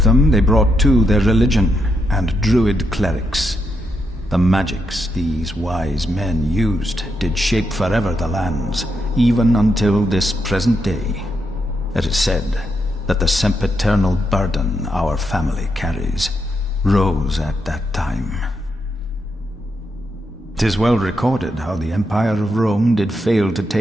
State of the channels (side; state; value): both; normal; correlation 0.81